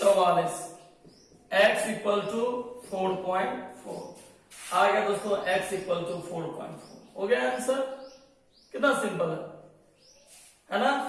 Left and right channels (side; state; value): both; identical; correlation 1.00